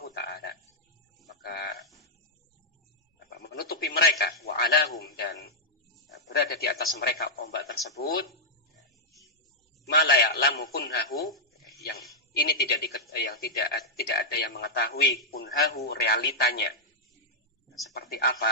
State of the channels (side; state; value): both; normal; correlation -0.05